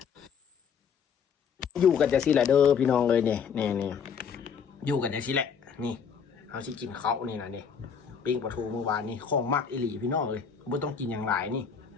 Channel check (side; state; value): right; quieter; 6.8 dB